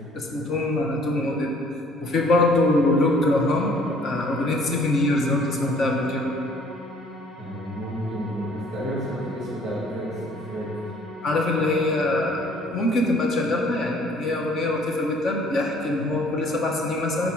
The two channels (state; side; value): normal; both; correlation 0.57